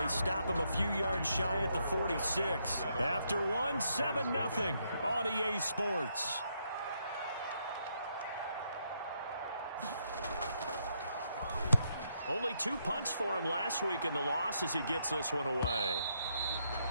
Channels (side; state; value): both; inverted; correlation -0.77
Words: stop him a few yards shy at the 46. After one, 7-0 on EA Sports. Only 2 punts for him last week in the loss as he gets this one away.